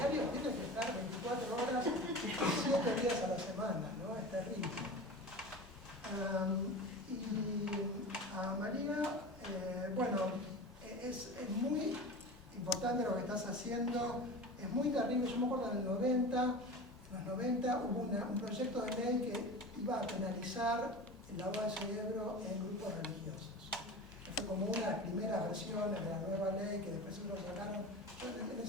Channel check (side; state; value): both; normal; correlation 0.32